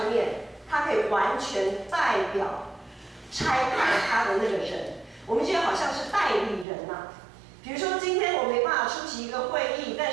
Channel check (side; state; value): left; drops out; at 6.7 s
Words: 面，他可以完全代表差派他的那个人，我们就好像是代理人嘛。比如说今天我没办法出席一个会议，但